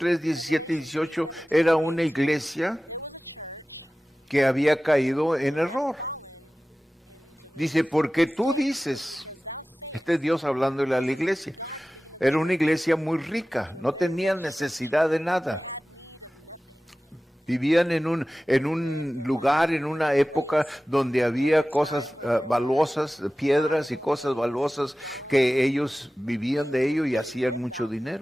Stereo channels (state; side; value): normal; both; correlation 0.96